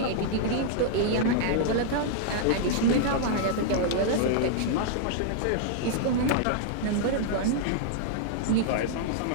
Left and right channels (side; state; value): both; different; correlation -0.01